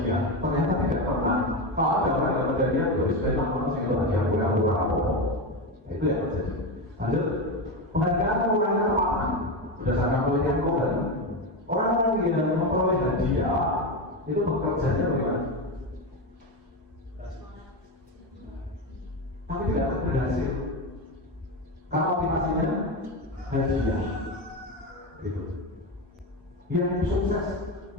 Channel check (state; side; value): normal; both; correlation 0.15